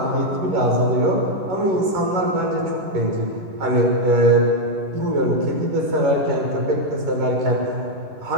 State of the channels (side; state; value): left; late; 11 ms